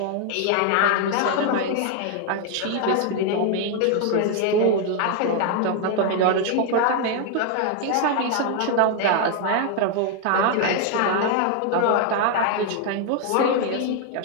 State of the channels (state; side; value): different; both; correlation 0.00